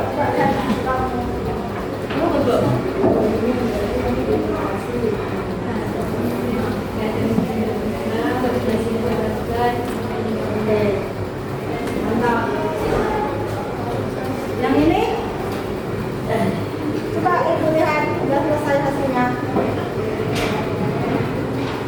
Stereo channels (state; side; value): identical; both; correlation 1.00